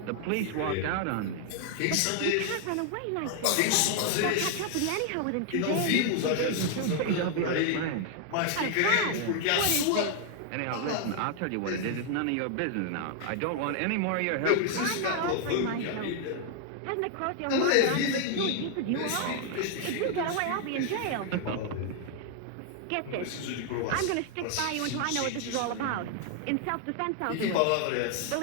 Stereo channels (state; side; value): different; both; correlation 0.00